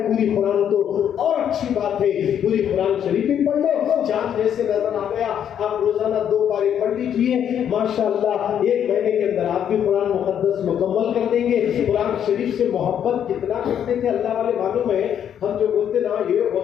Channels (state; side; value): quieter; right; 9.2 dB